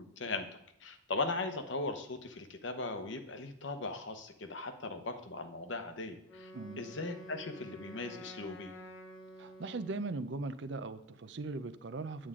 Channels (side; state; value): both; normal; correlation -0.03